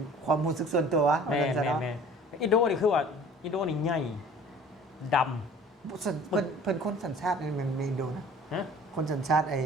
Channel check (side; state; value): both; normal; correlation 0.48